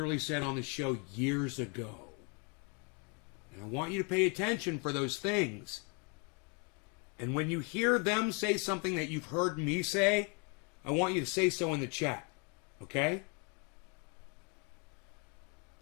said on the show years ago. And I want you to pay attention for those things. And when you hear them say something that you've heard me say, I want you to say so in the chat. Okay?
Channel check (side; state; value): right; quieter; 34.8 dB